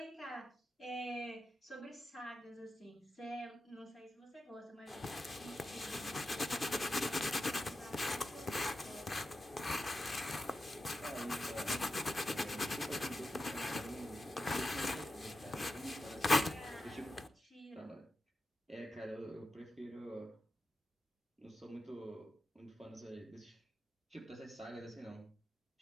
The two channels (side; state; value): both; normal; correlation 0.90